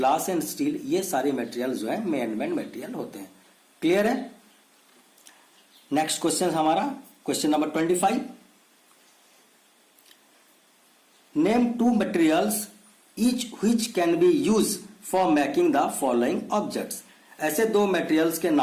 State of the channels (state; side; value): identical; both; correlation 1.00